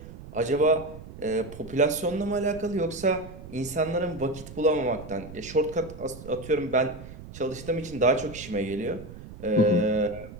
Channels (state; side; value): noise; right; rumble, 14 dB below the sound